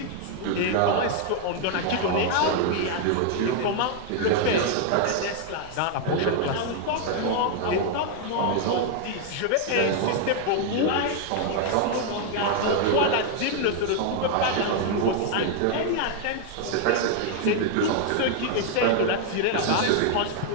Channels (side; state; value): both; different; correlation 0.00